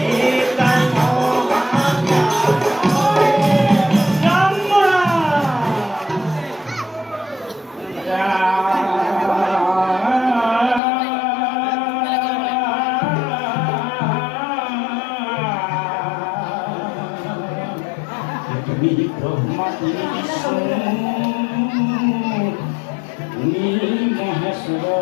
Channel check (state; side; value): drops out; right; at 10.8 s